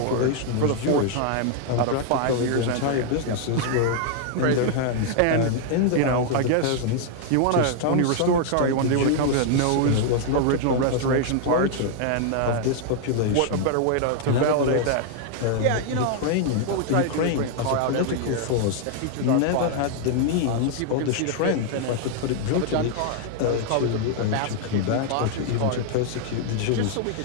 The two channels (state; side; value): different; both; correlation 0.00